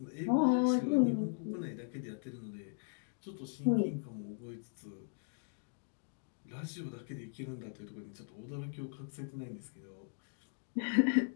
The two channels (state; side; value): silent; right; digital silence